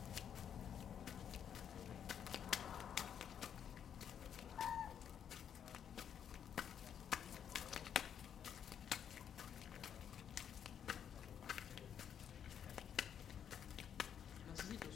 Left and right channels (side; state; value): right; quieter; 8.6 dB